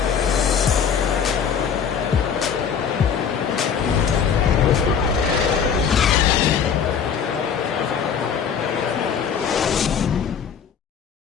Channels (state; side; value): quieter; right; 7.3 dB